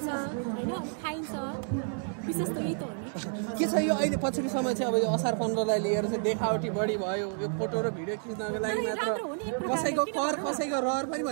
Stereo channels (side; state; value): left; silent; 56 dB below the other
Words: होइन, खाइन्छ। विशेष त यही त हो नि। के छ यो अहिले पछिल्लो समय चाहिँ अब यो असार 15 लाई लिएर चाहिँ देखावटी बढी भयो, यो फोटो र भिडियो खिच्नको लागि मात्र कसैको कर कसैको रहर पनि